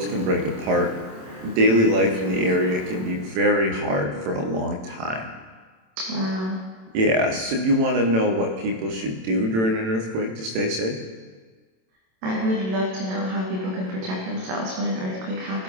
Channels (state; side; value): late; left; 27 ms